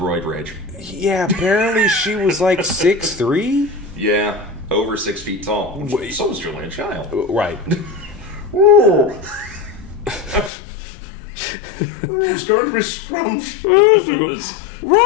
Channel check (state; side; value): drops out; right; at 10.5 s